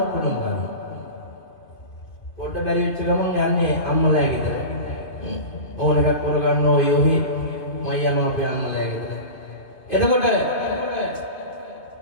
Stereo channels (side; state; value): right; late; 2.5 ms